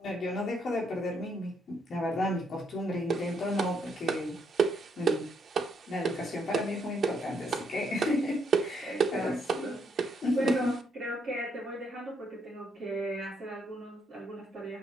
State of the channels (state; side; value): normal; both; correlation 0.74